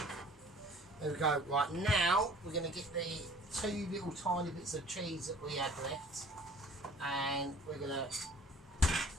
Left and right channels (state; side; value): normal; both; correlation 0.50